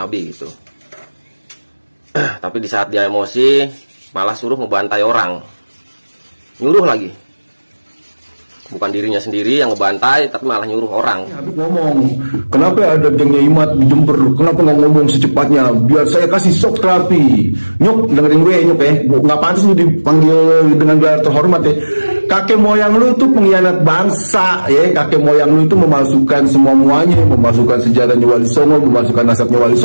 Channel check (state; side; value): inverted; both; correlation -1.00